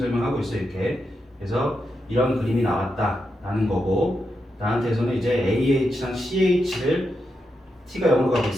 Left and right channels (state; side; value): normal; both; correlation 0.85